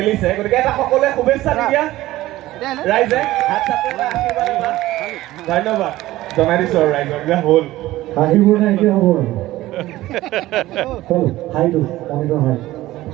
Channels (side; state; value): left; quieter; 16.4 dB